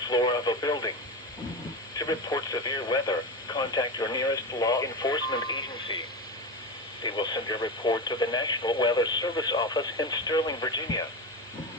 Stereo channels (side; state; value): both; normal; correlation 0.21